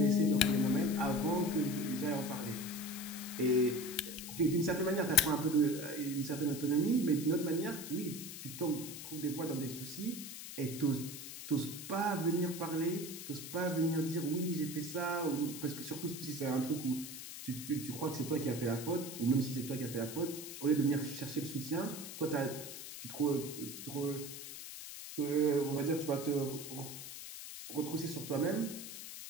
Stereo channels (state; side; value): noise; left; hiss, 10 dB below the sound